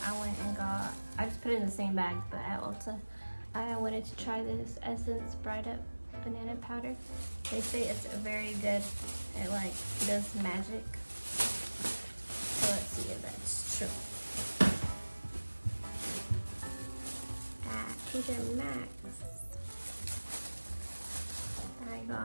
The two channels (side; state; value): both; inverted; correlation -1.00